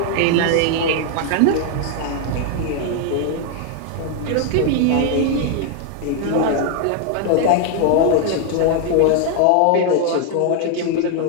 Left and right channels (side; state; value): both; different; correlation 0.00